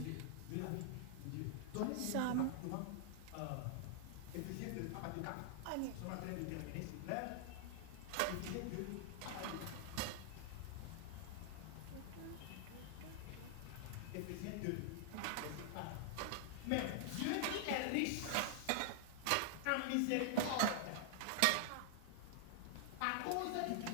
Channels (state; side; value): different; both; correlation -0.01